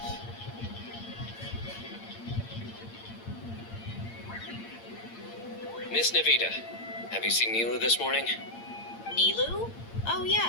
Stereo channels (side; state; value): right; late; 8.7 ms